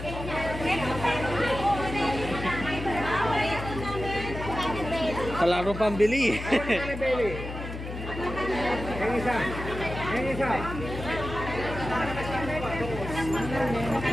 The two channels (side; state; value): left; noise; hum, 8 dB below the sound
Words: Kalaro pambili. Ayun ka na belly. Yung isa. Yung isa.